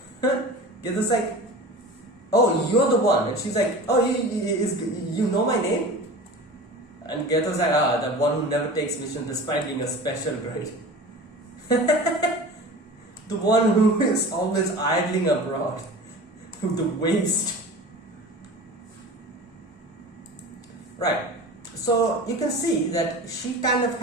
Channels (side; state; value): both; normal; correlation 0.36